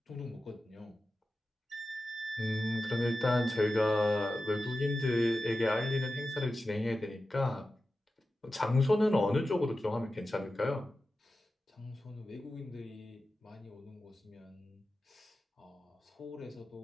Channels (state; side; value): normal; both; correlation 0.93